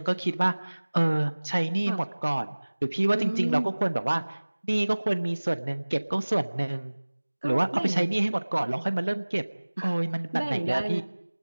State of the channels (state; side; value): inverted; both; correlation -1.00